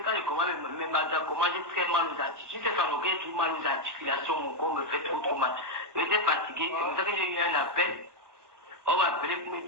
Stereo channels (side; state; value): left; late; 1.2 ms